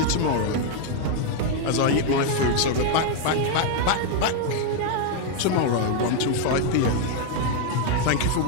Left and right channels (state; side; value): different; both; correlation 0.01